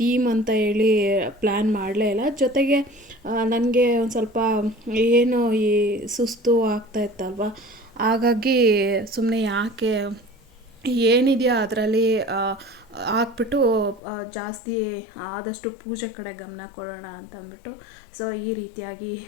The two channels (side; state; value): right; drops out; at 14.0 s